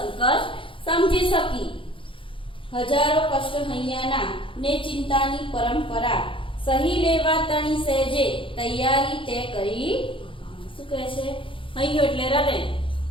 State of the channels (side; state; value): right; late; 0.25 ms